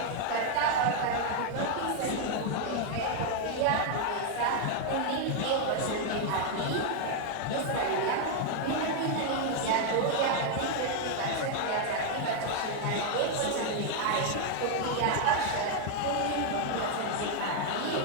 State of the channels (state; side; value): different; both; correlation 0.00